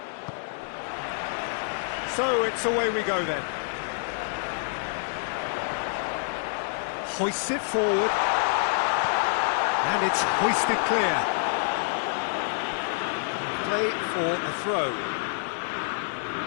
So it's away we go then. Hoists it forward. And it's hoisted clear. Play for a throw.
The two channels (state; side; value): silent; right; digital silence